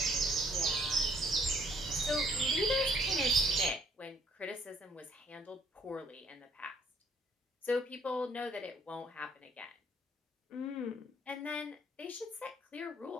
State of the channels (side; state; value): both; normal; correlation 0.64